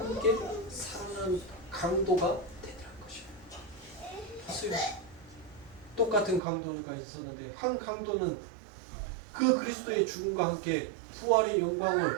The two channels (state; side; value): drops out; left; at 6.4 s